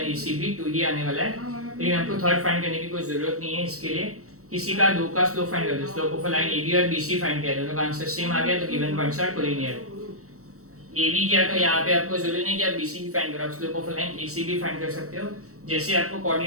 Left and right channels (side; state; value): left; late; 0.64 ms